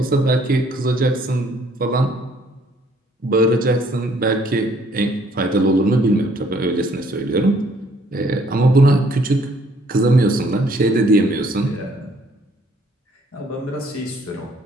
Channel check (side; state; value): both; normal; correlation 0.63